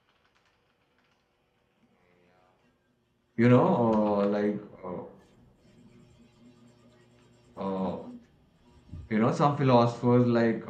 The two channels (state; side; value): identical; both; correlation 1.00